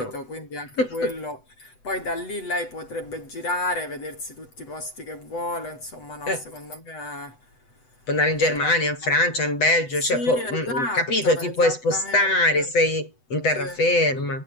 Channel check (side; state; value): right; late; 8.0 ms